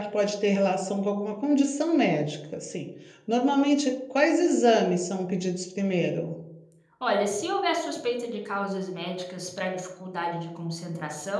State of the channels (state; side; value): identical; both; correlation 1.00